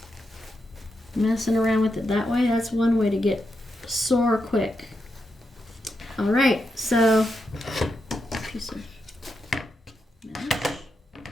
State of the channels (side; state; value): both; normal; correlation 0.85